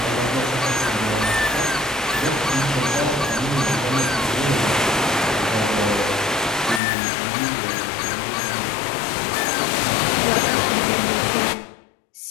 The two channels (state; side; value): drops out; right; at 6.8 s